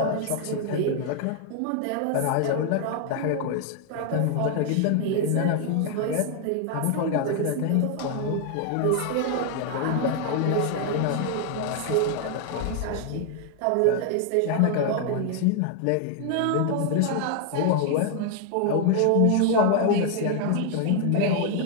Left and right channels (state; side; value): different; both; correlation 0.00